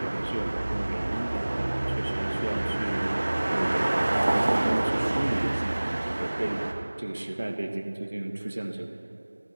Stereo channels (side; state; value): both; inverted; correlation -1.00